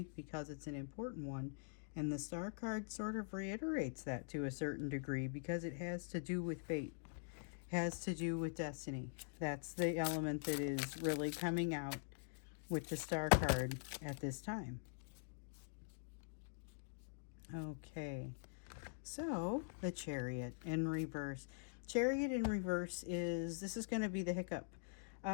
because it's an important one. And the Star card sort of reiterates that to a certain degree, because it has to do with fate, has to do with destiny. That's the element that is really coming out with the Star card at this time. Okay, so the Chariot in reverse. Chariot in reverse this is going to be the hiccup.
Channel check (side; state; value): right; silent; digital silence